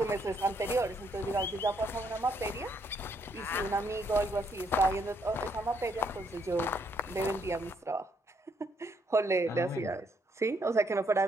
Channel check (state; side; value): normal; both; correlation 0.72